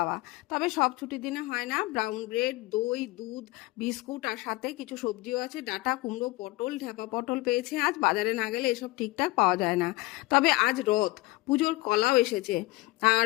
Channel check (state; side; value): quieter; right; 21.3 dB